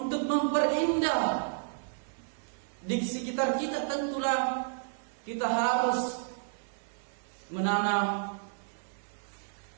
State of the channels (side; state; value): left; silent; digital silence